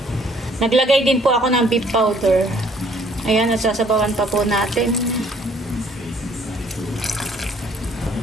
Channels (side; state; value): both; normal; correlation 0.61